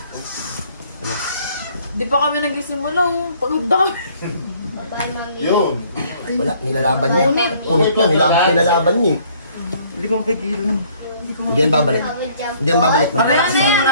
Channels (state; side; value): inverted; both; correlation -0.60